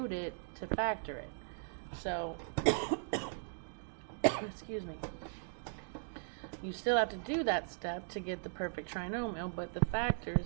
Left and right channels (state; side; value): silent; left; digital silence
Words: it to factor it. So, excuse me. You still have to do that step to get the perfect trinomial, but the factor